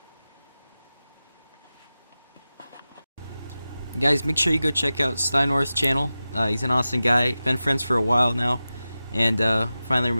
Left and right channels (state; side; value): inverted; both; correlation -0.94